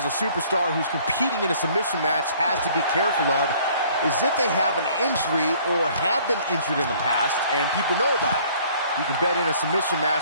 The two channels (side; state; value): both; inverted; correlation -0.56